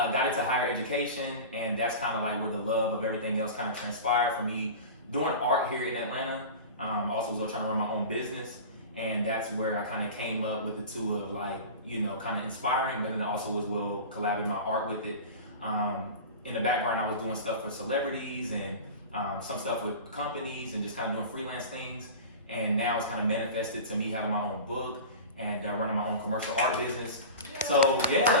into higher education, and that's kind of like where the love of everything else kind of transpired for me. Doing art here in Atlanta, also was trying to run my own business, and that's where I kind of came up with the two of like, you know, kind of inspiring, but then also as well collabing my art with it. In the background, I was doing stuff for celebrities and some stuff with companies and just kind of doing freelance things. And now it's kind of manifested to me having my own book and running my own commercial art business. So yeah,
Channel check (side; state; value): both; inverted; correlation -0.32